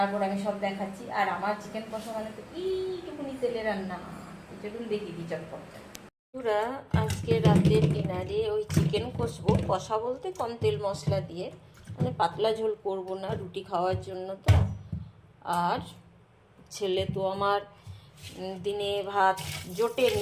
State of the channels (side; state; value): both; identical; correlation 1.00